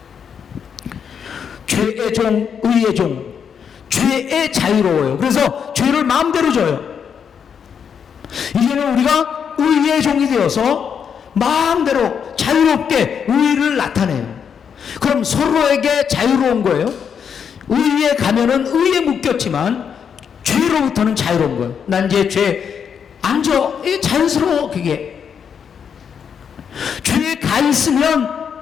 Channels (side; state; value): right; quieter; 7.3 dB